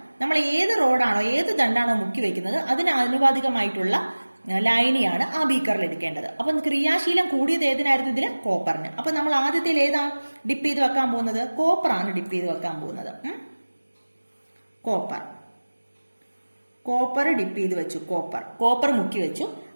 നമ്മൾ ഏത് റോഡാണോ ഏത് ദണ്ടാണോ മുക്കി വെക്കുന്നത് അതിന് ആനുപാതികമായിട്ടുള്ള ലൈനിയാണ് ആ ബീക്കറിൽ എടുക്കേണ്ടത്. അപ്പൊ ക്രിയാശീലം കൂടിയത് ഏതിനായിരുന്നു? ഇതില് കോപ്പറിന്. അപ്പൊ നമ്മൾ ആദ്യത്തിൽ ഏതാ ഡിപ്പ് ചെയ്ത് വെക്കാൻ പോകുന്നത്? കോപ്പറാണ് ഡിപ്പ് ചെയ്ത് വെക്കാൻ പോകുന്നത്. കോപ്പർ ഡിപ്പ് ചെയ്ത് വെച്ചു, കോപ്പർ മുക്കി വെച്ചു.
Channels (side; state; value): both; inverted; correlation -1.00